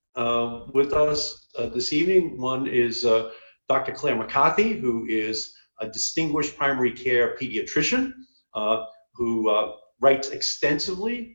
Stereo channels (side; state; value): both; inverted; correlation -1.00